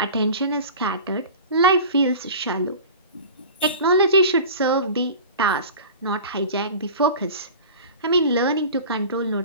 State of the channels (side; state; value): both; inverted; correlation -0.36